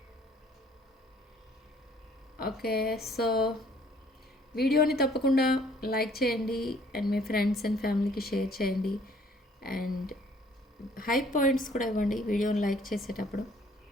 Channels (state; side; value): normal; both; correlation 0.59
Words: ఓకే, సో వీడియోని తప్పకుండా లైక్ చేయండి అండ్ మీ ఫ్రెండ్స్ అండ్ ఫ్యామిలీకి షేర్ చేయండి అండ్ హై పాయింట్స్ కూడా ఇవ్వండి వీడియోని లైక్ చేసేటప్పుడు.